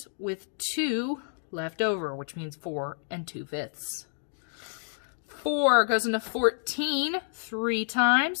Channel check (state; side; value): silent; right; digital silence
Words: with 2 left over, which means 4 2/5. 4 goes into 14 3